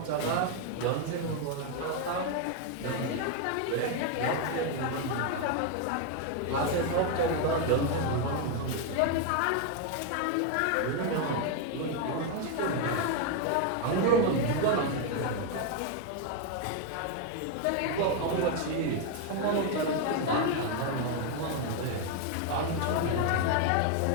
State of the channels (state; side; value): different; both; correlation 0.01